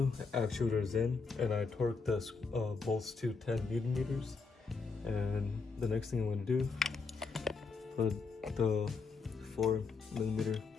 actuator is in, and I torqued the bolts to 10 Newton meters. And the next thing I'm going to do, put the 4mm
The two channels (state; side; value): quieter; right; 4.7 dB